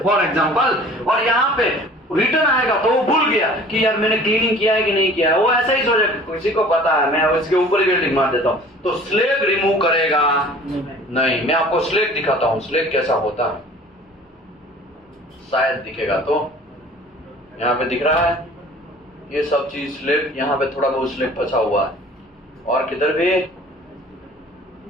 एग्जांपल। और यहाँ पे रिटर्न आएगा तो वो भूल गया कि यार मैंने क्लीनिंग किया है कि नहीं किया है। वो ऐसा ही सोचेगा, किसी को पता है, मैं उसके ऊपर ही वेल्डिंग मार देता हूं। तो स्लेग रिमूव करेगा नहीं। मैं आपको स्लेग दिखाता हूं, स्लेग कैसा होता है, शायद दिखेगा। तो यहाँ पे दिख रहा है ये सब चीज स्लेग, यहाँ पे थोड़ा बहुत स्लेग फंसा हुआ है, और किधर भी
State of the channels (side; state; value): both; normal; correlation 0.47